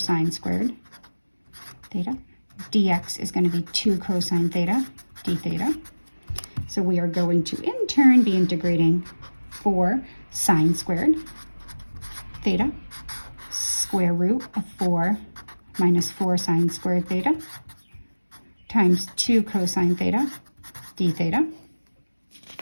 squared theta. Dx is going to be 2 cosine theta, d theta. So we are going to, in turn, be integrating 4 sine squared theta, square root of 4 minus 4 sine squared theta, times 2 cosine theta, d theta.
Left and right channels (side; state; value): both; inverted; correlation -1.00